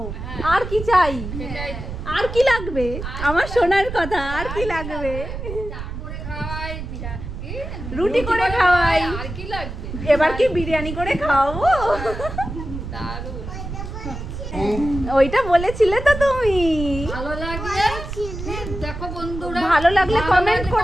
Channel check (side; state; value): right; noise; rumble, 8 dB below the sound